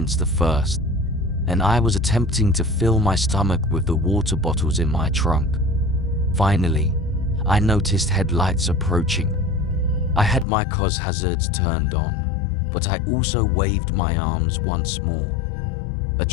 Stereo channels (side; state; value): right; drops out; at 10.5 s